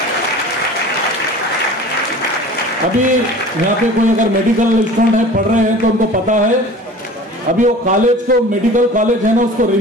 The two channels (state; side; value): normal; both; correlation 0.41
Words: अभी यहाँ पे कोई अगर मेडिकल स्टूडेंट है, पढ़ रहे हैं, तो उनको पता है अभी वो कॉलेज को, मेडिकल कॉलेज है ना, उसको